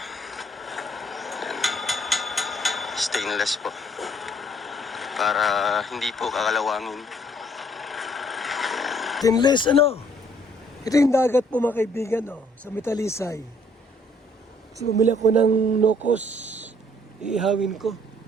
Ayan. Stainless po. Para hindi po kakalawangin. Stainless Ito yung dagat po mga kaibigan sa Metalisay. So bumili ako ng nokos, iihawin ko.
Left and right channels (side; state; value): both; normal; correlation 0.63